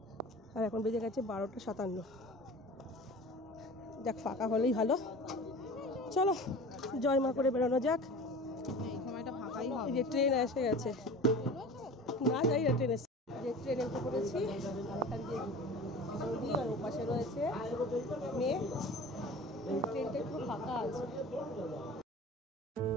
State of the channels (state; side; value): normal; both; correlation 0.38